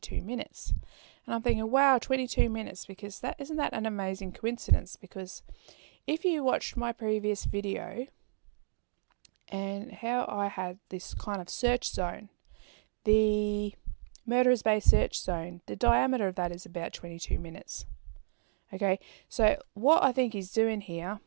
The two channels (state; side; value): silent; left; digital silence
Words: minutes. And I'm thinking, wow, 22 minutes, because isn't that an amazing coincidence? Because if you watched my previous video and how I had this kind of search zone, the Murderers Bay search zone, the diameter of that is about 22 minutes. Okay, so what I think he's doing here,